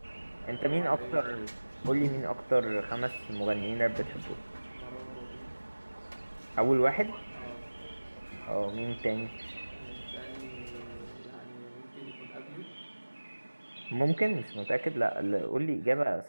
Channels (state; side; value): inverted; both; correlation -1.00